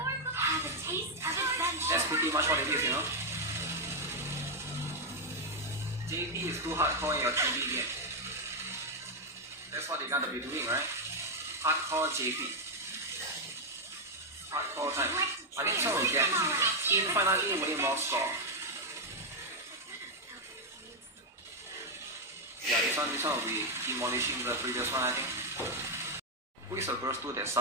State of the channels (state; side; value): normal; both; correlation 0.01